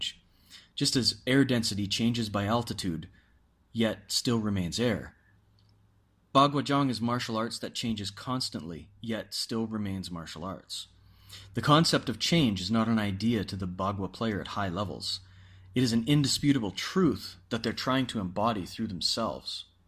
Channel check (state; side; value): identical; both; correlation 1.00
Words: Just as air density changes by altitude, yet still remains air. Bagua is martial arts that changes constantly, yet still remains martial arts. The concept of change is not an idea to the Bagua player at high levels. It is an indisputable truth that they're trying to embody through themselves.